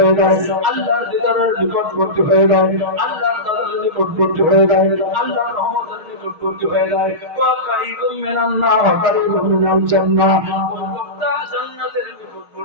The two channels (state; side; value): late; left; 6.4 ms